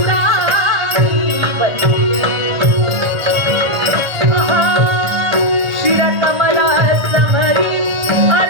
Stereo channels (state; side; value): late; left; 1.3 ms